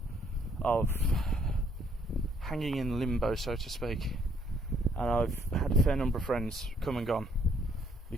of hanging in limbo, so to speak. And I've had a fair number of friends come and gone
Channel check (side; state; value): both; normal; correlation 0.66